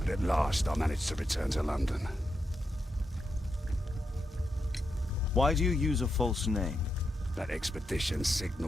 but at last I managed to return to London. Why do you use a false name? That expedition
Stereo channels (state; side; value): normal; both; correlation 0.85